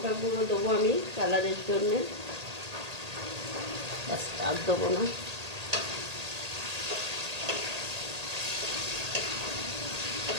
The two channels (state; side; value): late; left; 1.8 ms